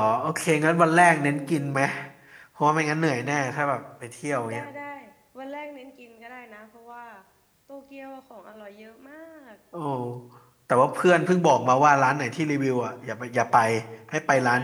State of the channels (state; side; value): identical; both; correlation 1.00